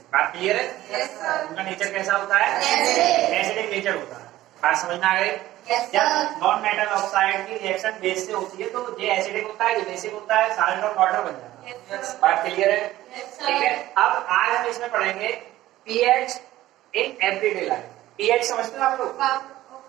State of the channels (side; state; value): left; quieter; 15.3 dB